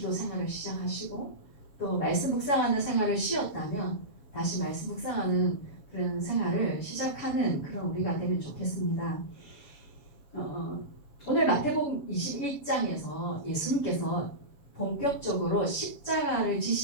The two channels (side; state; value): right; late; 7.5 ms